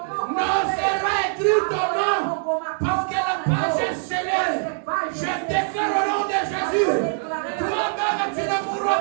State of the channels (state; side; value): silent; left; digital silence